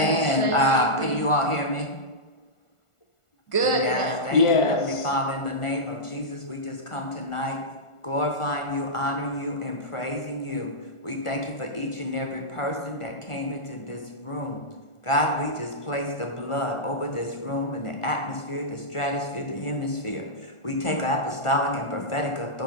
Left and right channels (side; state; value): right; late; 1.4 ms